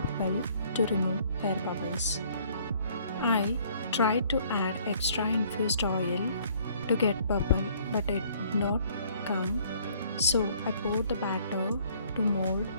well to remove air bubbles. I tried to add extra infused oil to get purple, but it did not come. So I poured the batter to mold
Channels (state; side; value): inverted; both; correlation -0.60